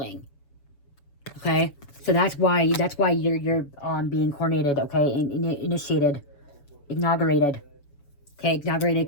Okay, so that's why you're being coronated. Okay, initiated, inaugurated. Okay,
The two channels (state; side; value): late; right; 7.2 ms